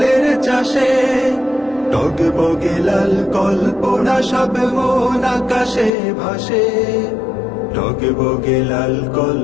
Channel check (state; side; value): drops out; right; at 5.9 s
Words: চাষে। টগবগে লাল কল্পনা সব মন আকাশে ভাসে, টগবগে লাল